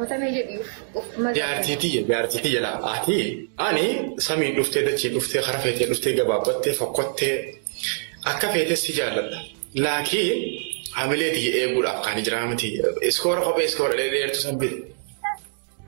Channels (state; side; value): silent; left; digital silence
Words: jedhi of Jaartii jala ati ani samiin dhuftee dachii dhuftee kara feetee dhuftee gabaabbattee fokkottee akka feetee si jaalladha. Laakiin hamileetii eeguudhaaf kan jiraa miti. Iskoora kophee iskoora dheedeertu sabbite.